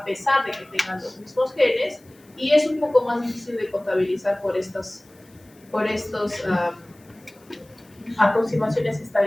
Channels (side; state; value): left; noise; hiss, 30 dB below the sound